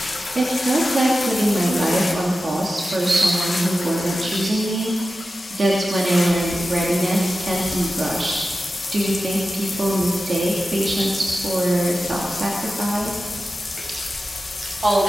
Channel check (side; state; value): both; normal; correlation 0.93